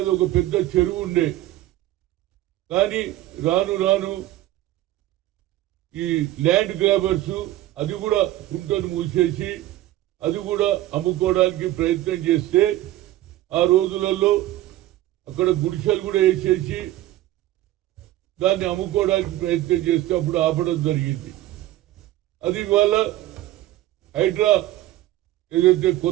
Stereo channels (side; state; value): left; quieter; 15.1 dB